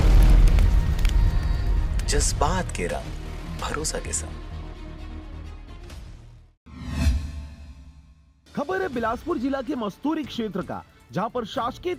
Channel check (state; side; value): identical; both; correlation 1.00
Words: जज्बात के रंग, भरोसा के संग। खबर है बिलासपुर जिला के मस्तूरी क्षेत्र का, जहां पर शासकीय